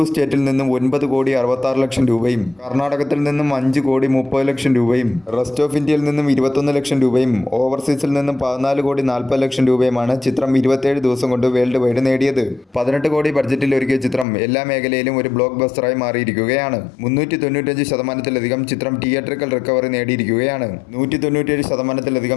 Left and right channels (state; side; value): drops out; right; at 14.2 s